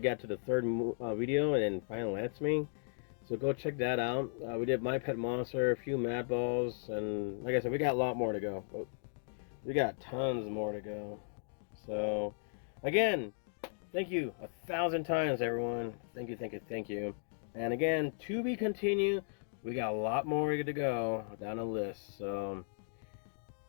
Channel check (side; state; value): right; silent; digital silence